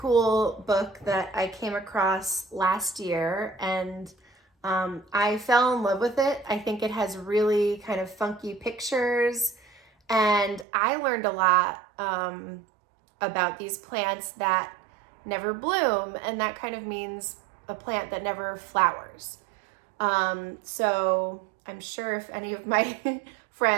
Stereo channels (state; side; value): drops out; left; at 10.7 s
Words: book that I came across last year, and I fell in love with it. I think it has really kind of funky pictures, and I learned a lot about these plants that never bloom, and that kind of means a plant that never flowers. So I'm sure if any of my